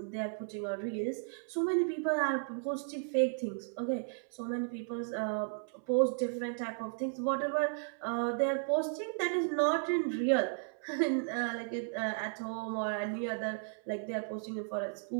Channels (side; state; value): left; silent; 55 dB below the other